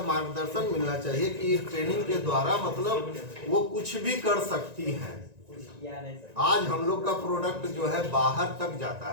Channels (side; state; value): left; late; 1.9 ms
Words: मार्गदर्शन मिलना चाहिए कि ट्रेनिंग के द्वारा मतलब वो कुछ भी कर सकती हैं। आज हम लोग का प्रोडक्ट जो है बाहर तक जाता